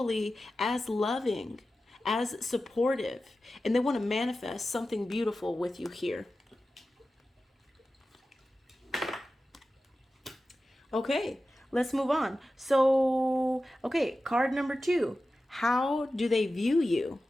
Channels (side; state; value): both; normal; correlation 0.94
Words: as loving, as supportive, and they want to manifest something beautiful with you here. Okay, let's move on. So, okay, card number 2. How do they view you?